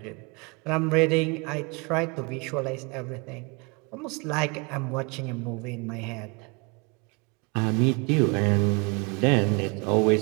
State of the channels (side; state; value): left; quieter; 30.4 dB